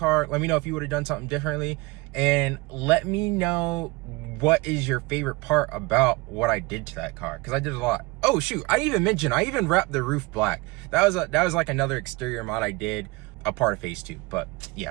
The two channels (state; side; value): quieter; left; 23.5 dB